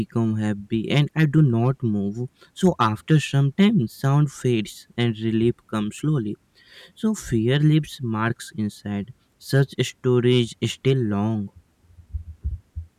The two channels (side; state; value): both; identical; correlation 1.00